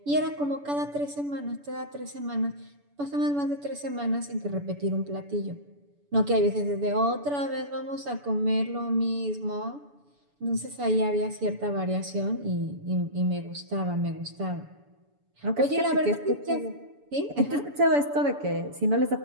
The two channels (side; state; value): left; late; 7.0 ms